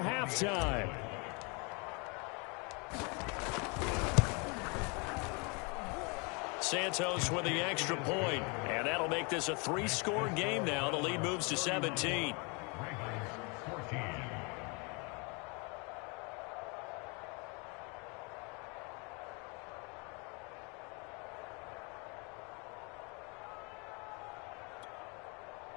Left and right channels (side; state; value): right; quieter; 31.8 dB